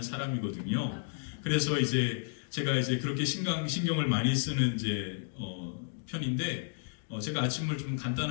사람이거든요. 그래서 이제 제가 이제 그렇게 신경을 많이 쓰는 이제 편인데 제가 아침을 좀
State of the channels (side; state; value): right; silent; digital silence